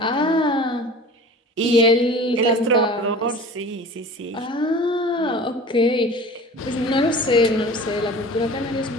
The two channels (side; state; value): both; normal; correlation 0.40